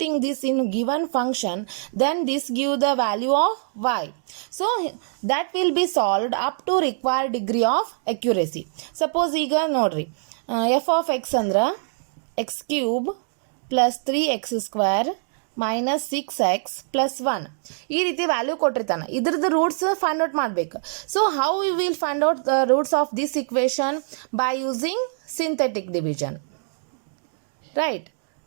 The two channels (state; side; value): silent; left; digital silence